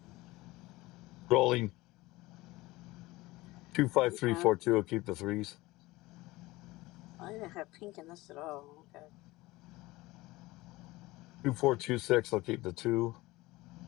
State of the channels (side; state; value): right; quieter; 19.8 dB